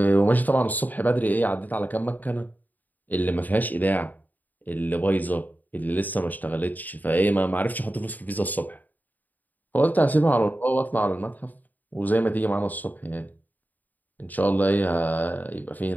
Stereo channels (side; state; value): right; late; 0.083 ms